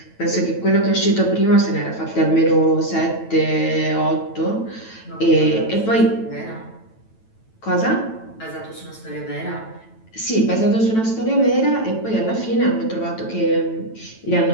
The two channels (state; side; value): late; right; 9.1 ms